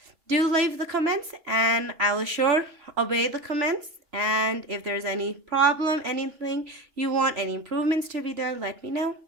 do leave the comments and I will sure obey the comments. And if there's any problem, anything you want, any improvements to be done, let me know.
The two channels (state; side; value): late; left; 3.0 ms